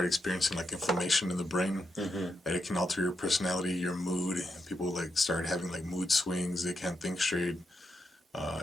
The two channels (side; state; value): both; normal; correlation 0.84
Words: experiencing like inflammation in the brain, that it can alter your personality, your mood. People like start having like mood swings. They can't think straight.